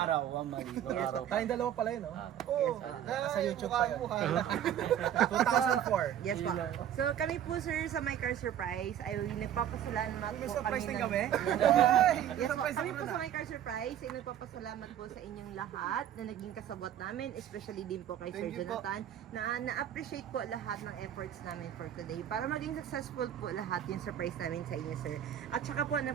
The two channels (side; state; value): left; quieter; 10.4 dB